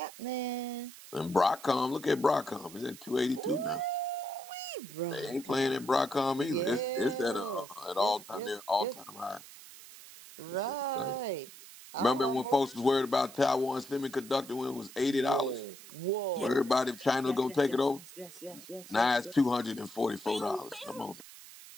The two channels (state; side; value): noise; right; hiss, 17 dB below the sound